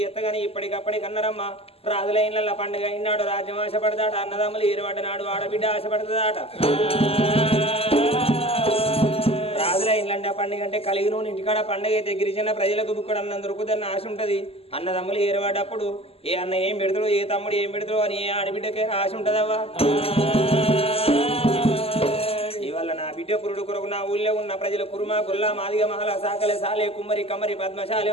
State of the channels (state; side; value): late; right; 0.29 ms